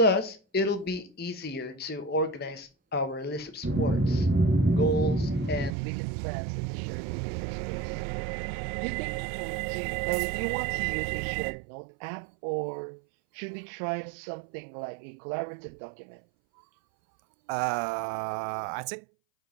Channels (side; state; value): left; drops out; at 5.7 s